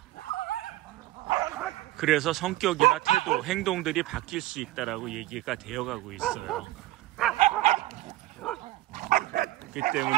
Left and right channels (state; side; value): quieter; left; 17.1 dB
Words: 그래서 성격이나 태도, 행동들이 바뀔 수 있다라고 얘기가 되어가고 있어요. 그렇기